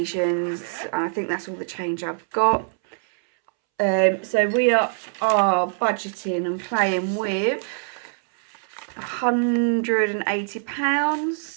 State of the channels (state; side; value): silent; left; 63 dB below the other